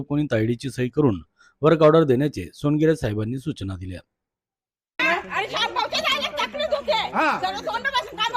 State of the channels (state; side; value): identical; both; correlation 1.00